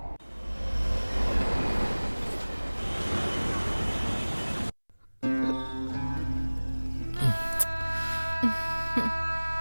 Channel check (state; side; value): inverted; both; correlation -1.00